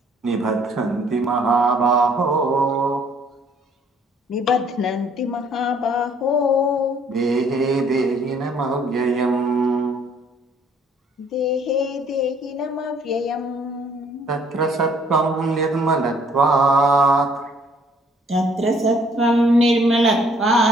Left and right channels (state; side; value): normal; both; correlation 0.61